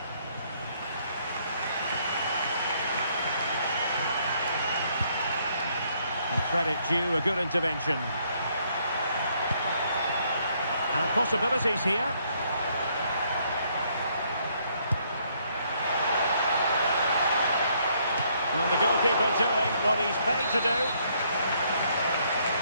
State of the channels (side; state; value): both; inverted; correlation -0.69